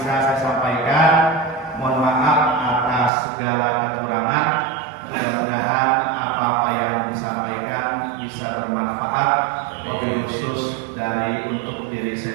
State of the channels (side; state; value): left; drops out; at 3.1 s